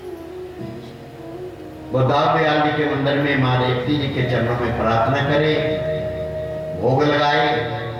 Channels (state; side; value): identical; both; correlation 1.00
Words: वो दाऊद दयाल जी के मंदिर में मां रेवती जी के चरणों में प्रार्थना करे, भोग लगाए